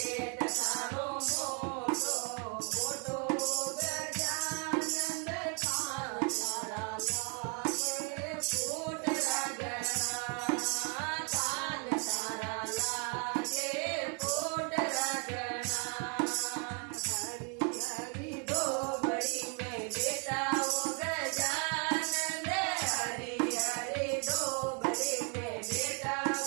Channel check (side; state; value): left; quieter; 38.0 dB